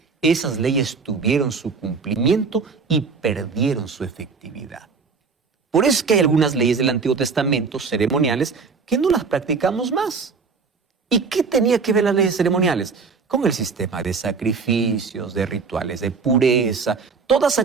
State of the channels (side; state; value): left; quieter; 5.0 dB